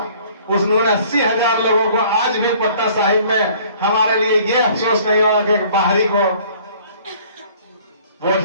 उन्होंने 80,000 लोगों को आज भी पटना साहिब में हमारे लिए ये अफसोस नहीं होगा कि बाहरी को वोट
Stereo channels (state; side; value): inverted; both; correlation -0.54